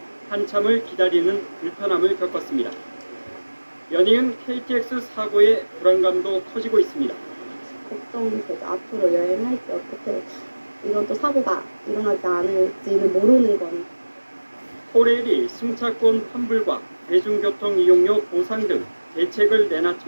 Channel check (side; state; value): both; inverted; correlation -1.00